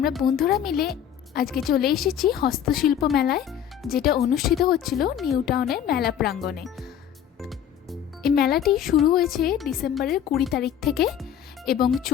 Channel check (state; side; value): quieter; right; 9.5 dB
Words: বন্ধুরা মিলে আজকে চলে এসেছি হস্তশিল্প মেলায়, যেটা অনুষ্ঠিত হচ্ছিল নিউ টাউনের মেলা প্রাঙ্গণে। এই মেলাটি শুরু হয়েছে ডিসেম্বরের 20 তারিখ থেকে এবং